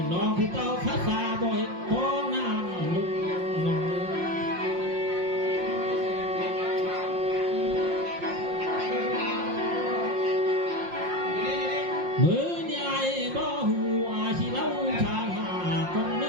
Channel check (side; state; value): left; late; 5.6 ms